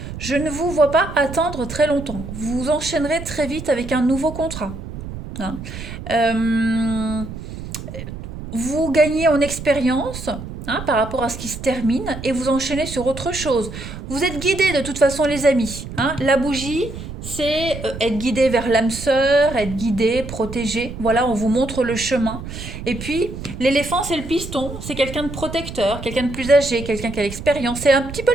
Je ne vous vois pas attendre très longtemps. Vous enchaînerez très vite avec un nouveau contrat. Hein. Euh, vous gagnez en expérience, hein, par rapport à ce qui se termine et vous enchaînez sur autre chose. Vous êtes guidés de toute façon, les amis. Hein. La bougie, c'est être guidé vers l'âme sœur, être guidé, protégé. Voilà, on vous montre le chemin. Et puis, l'éléphant, c'est le piston. C'est quelqu'un de protecteur, quelqu'un de plus âgé, quelqu'un qui a l'expérience. C'est un petit peu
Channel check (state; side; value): noise; right; rumble, 10 dB below the sound